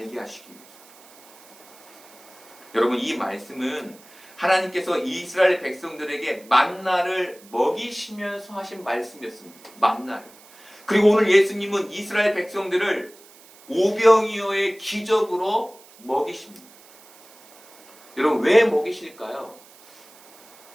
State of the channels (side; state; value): right; noise; hiss, 24 dB below the sound